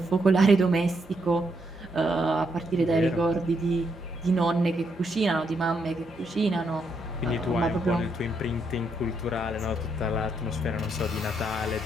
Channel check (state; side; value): normal; both; correlation 0.77